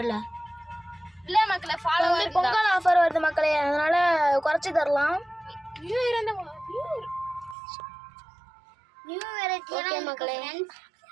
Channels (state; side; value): drops out; left; at 7.6 s